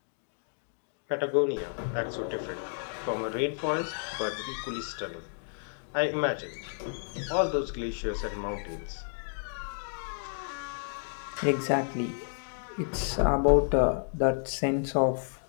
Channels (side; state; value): right; silent; digital silence